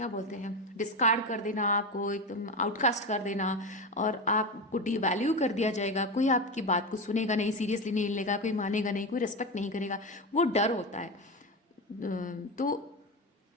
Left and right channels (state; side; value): normal; both; correlation 0.18